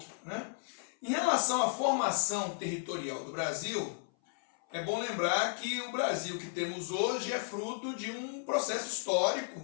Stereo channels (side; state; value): right; silent; 55 dB below the other